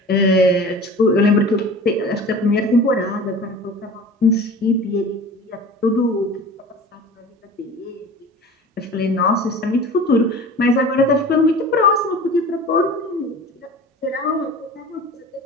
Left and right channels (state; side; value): normal; both; correlation 0.39